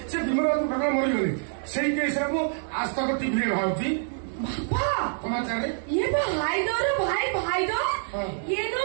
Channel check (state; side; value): silent; left; 61 dB below the other